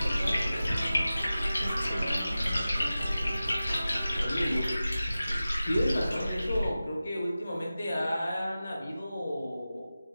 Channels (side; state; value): both; inverted; correlation -0.95